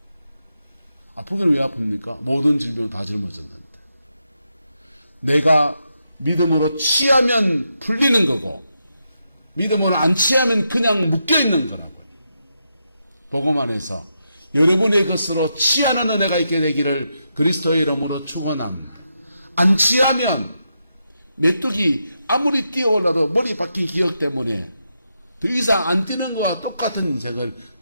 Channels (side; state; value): both; inverted; correlation -0.84